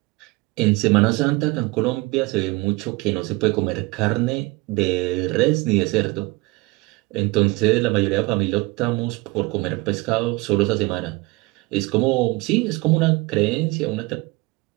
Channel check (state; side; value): quieter; left; 23.4 dB